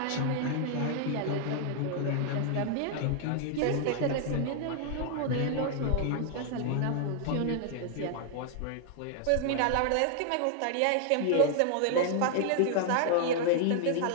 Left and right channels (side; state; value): both; different; correlation 0.00